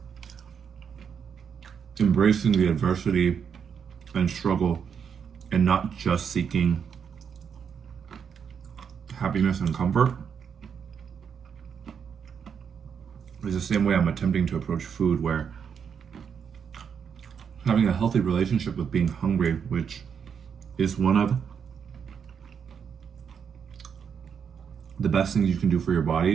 embracing the adversity and struggle and not just seeking happiness and comfort is the same way I'm attempting to approach food, where having a healthy relationship with being hungry, which is one of the best things you can do for your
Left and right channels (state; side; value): quieter; left; 7.1 dB